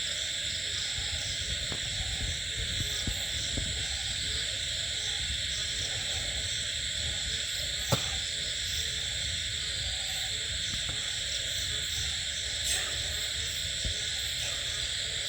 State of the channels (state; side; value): normal; both; correlation 0.97